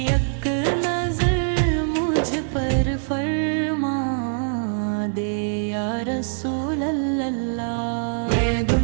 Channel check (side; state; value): left; silent; digital silence